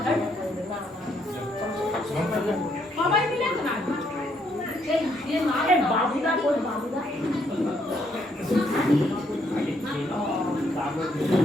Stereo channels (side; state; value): both; normal; correlation 0.72